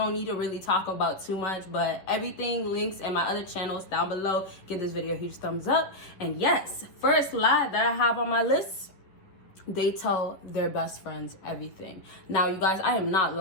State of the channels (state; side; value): late; right; 10 ms